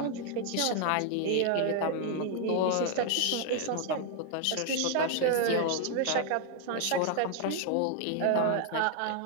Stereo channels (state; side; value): different; both; correlation 0.00